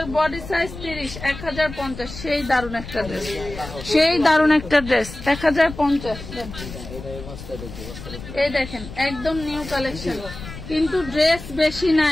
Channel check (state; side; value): noise; left; rumble, 12 dB below the sound